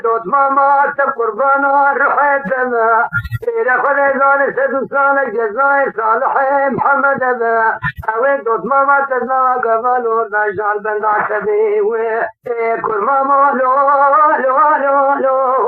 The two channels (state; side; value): identical; both; correlation 1.00